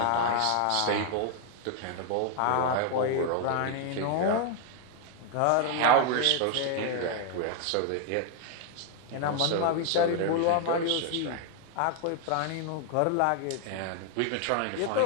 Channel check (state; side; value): different; both; correlation 0.00